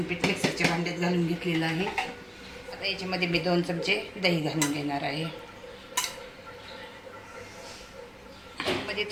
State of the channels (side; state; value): both; identical; correlation 1.00